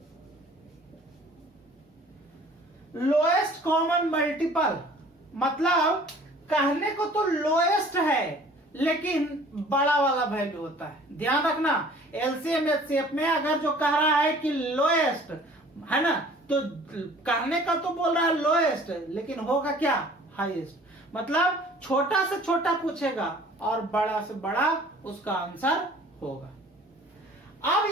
Lowest common multiple मतलब कहने को तो लोएस्ट है लेकिन बड़ा वाला वैल्यू होता है। ध्यान रखना, एलसीएम एचसीएफ में अगर जो कह रहा है कि लोएस्ट है ना, तो कहने का तो बोल रहा है लोएस्ट, लेकिन होगा क्या? हाईएस्ट। मतलब छोटा से छोटा पूछेगा और बड़ा से बड़ा उसका आंसर होगा। अब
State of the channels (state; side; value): normal; both; correlation 0.50